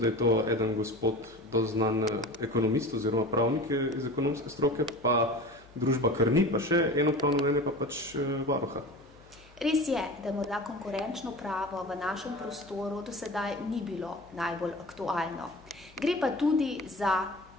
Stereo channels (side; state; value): left; noise; hum, 26 dB below the sound